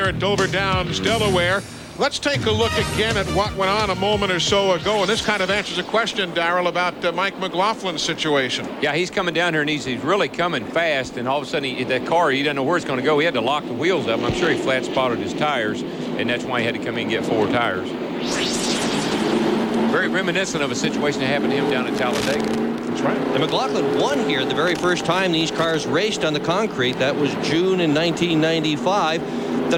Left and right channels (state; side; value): identical; both; correlation 1.00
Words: at Dover Downs, Delaware. Let's take a look again at what went on a moment or so ago, and this kind of answers a question, Darrell, about Mike McLaughlin's situation. Yeah, he's coming down here, and he's really coming fast, and all of a sudden, that car, he doesn't know where it's going to go. He had to lock the wheels up. I'm sure he flat spotted his tires, and that's why he had to come in and get 4 tires. Very reminiscent of a situation that happened to him down at Talladega. That's right. And McLaughlin won here the very first time these cars raced on the concrete. That was June in 1995. The